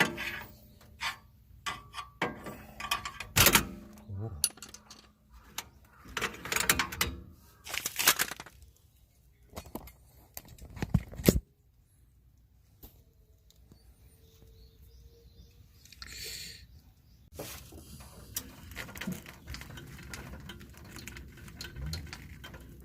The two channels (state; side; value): identical; both; correlation 1.00